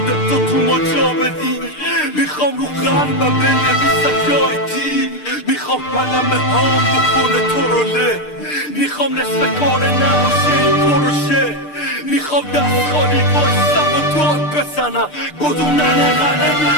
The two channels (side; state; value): right; late; 6.7 ms